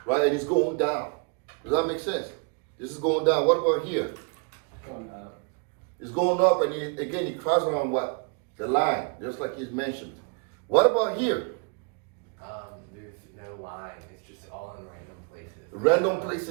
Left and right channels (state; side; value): quieter; left; 35.0 dB